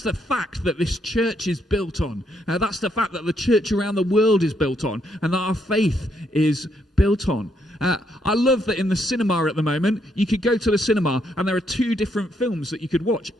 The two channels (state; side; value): normal; both; correlation 0.75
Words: the fact that this church is built on. That's the fact that the church around the world is built on, and that our faith is built on. I love that in the cinema at the moment, you could go to the cinema and there are 2 different films that you could watch